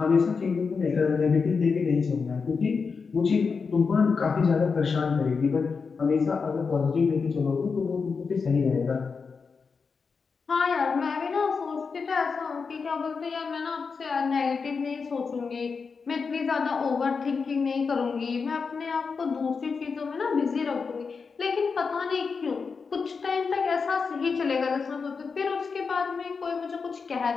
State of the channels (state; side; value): quieter; right; 5.2 dB